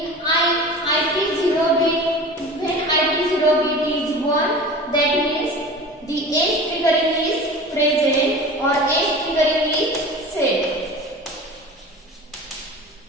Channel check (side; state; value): both; normal; correlation 0.36